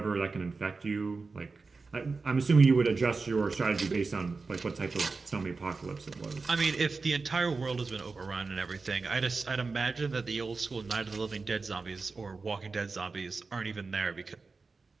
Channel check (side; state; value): left; quieter; 4.2 dB